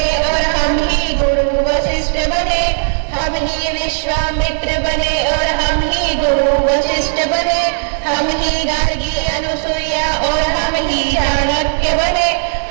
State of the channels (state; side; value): silent; left; digital silence